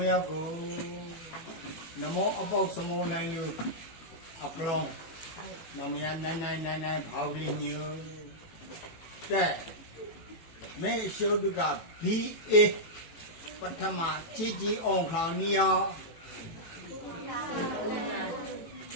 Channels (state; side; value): late; right; 18 ms